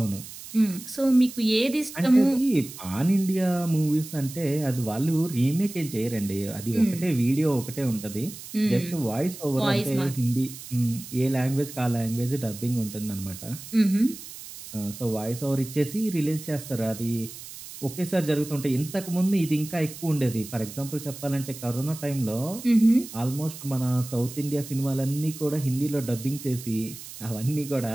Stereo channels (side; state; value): right; noise; hiss, 13 dB below the sound